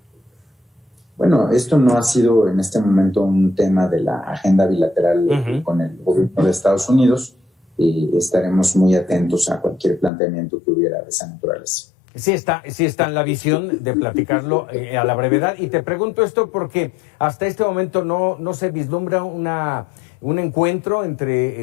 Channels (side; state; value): right; drops out; at 10.1 s